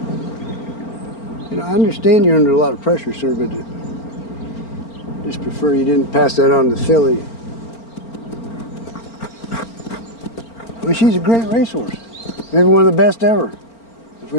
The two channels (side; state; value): right; late; 4.4 ms